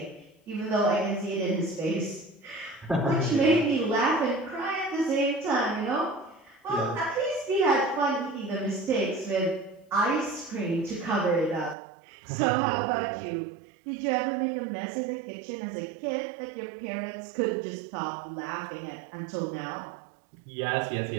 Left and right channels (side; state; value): left; drops out; at 11.8 s